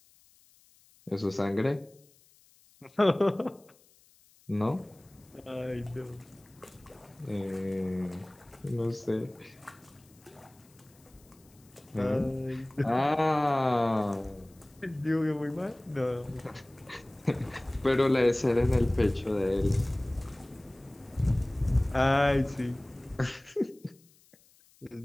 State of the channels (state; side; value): noise; left; hiss, 30 dB below the sound